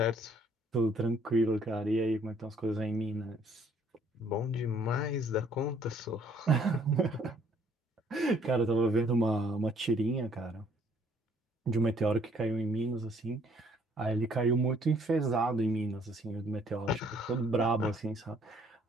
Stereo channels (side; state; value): both; normal; correlation 0.63